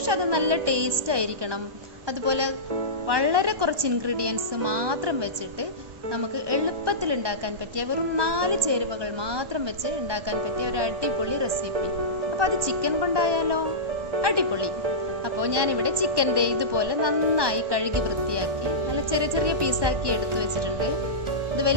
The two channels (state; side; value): late; left; 1.2 ms